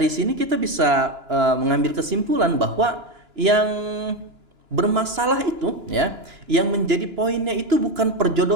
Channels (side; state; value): left; late; 2.9 ms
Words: sini kita bisa mengambil kesimpulan bahwa yang bermasalah itu ya, yang menjadi poinnya itu bukan